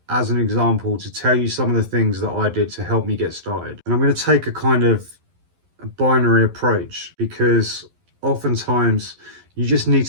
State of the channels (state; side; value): late; left; 11 ms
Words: as an example to tell you some of the things that I did to help me get started. And I'm going to take a kind of a binary approach, because oftentimes you just need